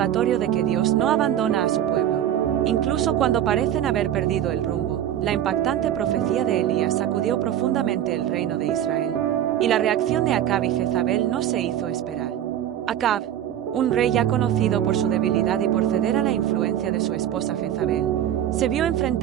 de que Dios no abandona a su pueblo, incluso cuando parecen haber perdido el rumbo. La impactante profecía de Elías sacudió profundamente el reino de Israel, y la reacción de Acab y Jezabel no se hizo esperar. Acab, un rey ya conocido por su debilidad y por ceder a la influencia de su esposa Jezabel, se vio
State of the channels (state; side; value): quieter; left; 10.9 dB